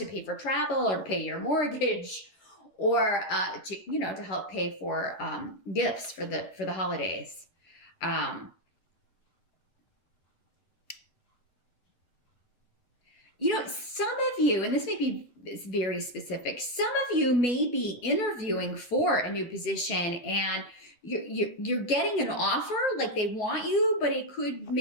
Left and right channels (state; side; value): late; right; 10 ms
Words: pay for travel, or to pay your mortgage, or to help pay for gifts for the holidays. Some of you, and this may be very specific, some of you may be interviewing for a new position, and you're getting an offer, like they want you, but it could